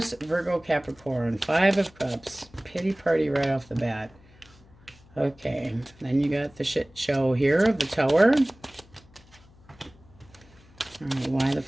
Virgo, Capricorn. 5 of Cups. Pity party right off the bat. Okay. Then you got the shit show here of the Tower. All right. Why the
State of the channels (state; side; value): noise; left; hum, 26 dB below the sound